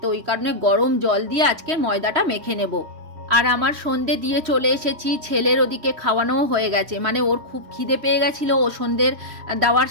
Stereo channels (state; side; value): late; left; 3.1 ms